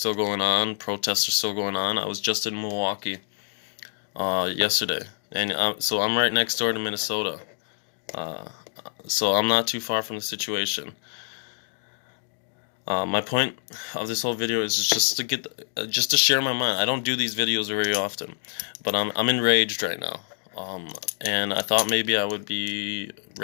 going on. Protests are still going on. I was just in Milwaukee yesterday, and so I'm right next door to Minnesota. So I'm not too far from the situation. My point of this whole video is just to share my mind. I don't do these videos very often, but I'm enraged right now. And I thought maybe I would be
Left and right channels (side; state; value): right; silent; digital silence